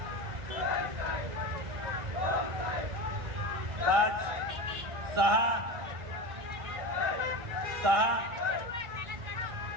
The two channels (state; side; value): late; left; 1.4 ms